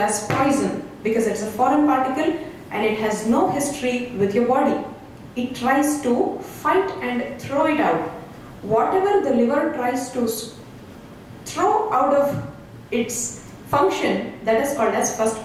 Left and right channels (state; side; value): identical; both; correlation 1.00